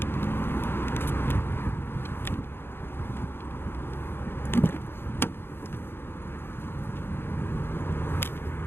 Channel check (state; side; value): late; right; 0.11 ms